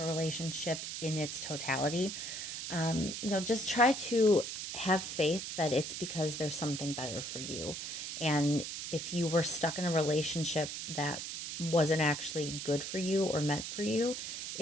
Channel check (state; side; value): noise; right; hiss, 6 dB below the sound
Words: relationship in its totality, just try to have faith that it's because there's something better for you. And if you were stuck in a relationship that wasn't actually good for you or meant for you,